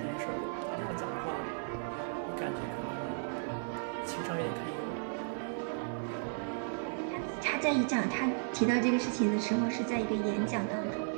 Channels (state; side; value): silent; left; 55 dB below the other